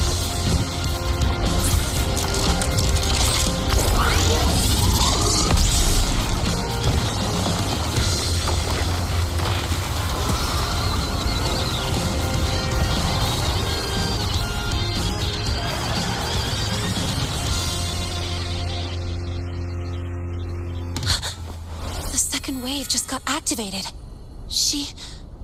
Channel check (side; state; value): both; identical; correlation 1.00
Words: Wave just got activated.